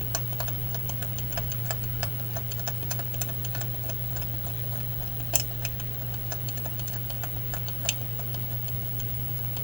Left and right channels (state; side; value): normal; both; correlation 0.75